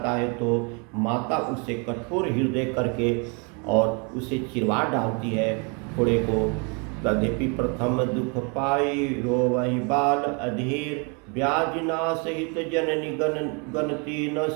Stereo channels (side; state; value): left; quieter; 33.9 dB